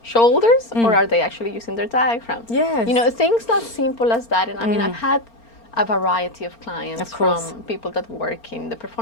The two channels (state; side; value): late; right; 4.4 ms